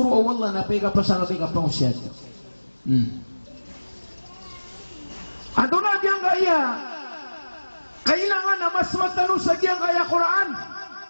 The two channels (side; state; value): both; inverted; correlation -1.00